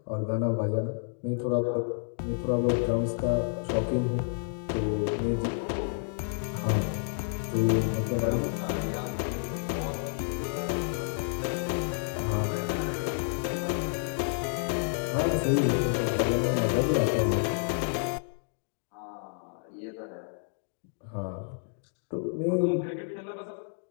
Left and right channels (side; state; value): right; silent; digital silence